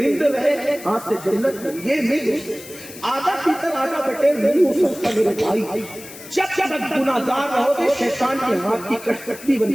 رہے ہاتھ سے جنت میں، یہ نہیں ہو سکتا. آدھا پیتر آدھا بٹیر نہیں ہو سکتا میرے بھائی. جب تک گناہگار رہو گے شیطان کے ہاتھ کی کٹکٹی بن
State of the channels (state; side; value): noise; left; hiss, 16 dB below the sound